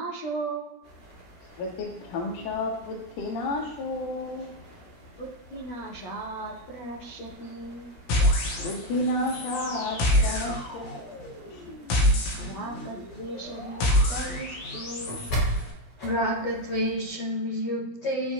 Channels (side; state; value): right; late; 17 ms